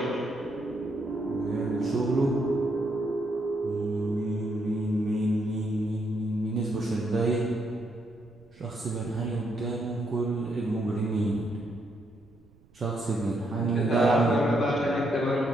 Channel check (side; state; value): right; noise; rumble, 28 dB below the sound